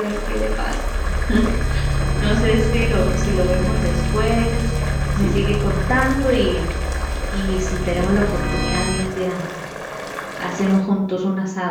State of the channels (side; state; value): both; identical; correlation 1.00